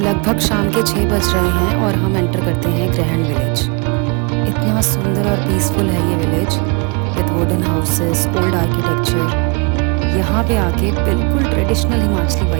शाम के 6 बज रहे हैं और हम एंटर करते हैं ग्रहण विलेज। इतना सुंदर और पीसफुल है ये village, with wooden houses, old architecture. यहाँ पे आके बिल्कुल ट्रेडिशनल हिमाचली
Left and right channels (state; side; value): quieter; left; 32.0 dB